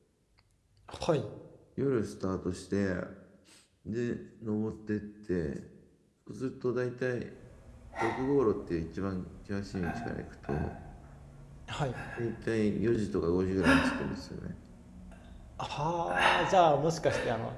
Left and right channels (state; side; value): identical; both; correlation 1.00